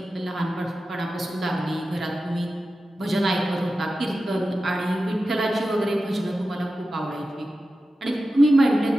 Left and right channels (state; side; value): normal; both; correlation 0.93